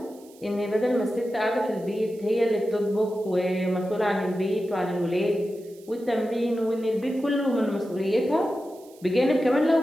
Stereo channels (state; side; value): noise; right; hiss, 26 dB below the sound